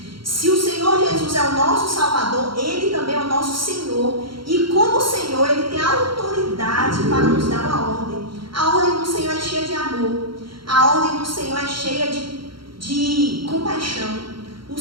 Se o Senhor Jesus é o nosso Salvador, Ele também é o nosso Senhor. E como Senhor, Ele tem autoridade para nos dar uma ordem. A ordem do Senhor é cheia de amor. A ordem do Senhor é cheia de compaixão. O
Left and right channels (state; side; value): late; left; 0.73 ms